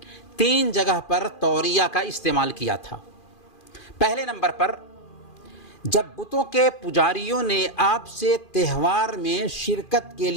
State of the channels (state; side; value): late; right; 2.4 ms